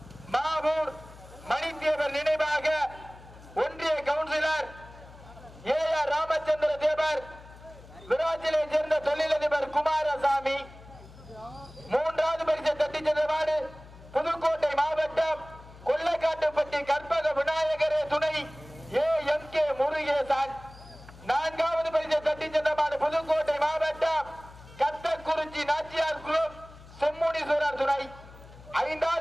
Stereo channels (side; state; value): left; noise; hum, 20 dB below the sound